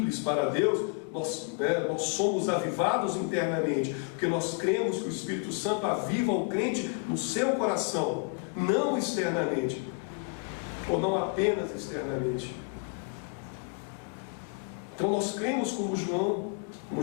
para Deus, nós somos avivados internamente, porque nós cremos que o Espírito Santo aviva o crente no seu coração, não externamente, ou não apenas externamente. Então nós cremos como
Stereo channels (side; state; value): right; quieter; 36.4 dB